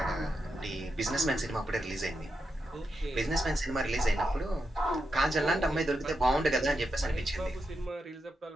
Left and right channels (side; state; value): both; normal; correlation 0.86